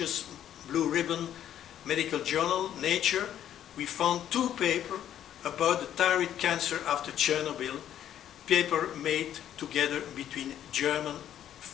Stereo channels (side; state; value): right; quieter; 10.7 dB